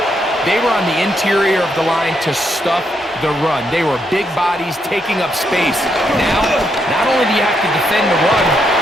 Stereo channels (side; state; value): both; normal; correlation 0.78